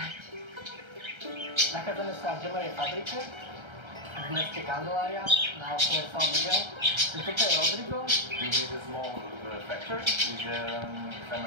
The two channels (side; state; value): left; late; 1.3 ms